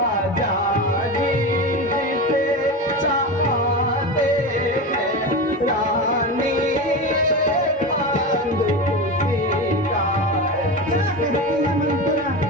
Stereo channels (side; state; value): both; normal; correlation 0.23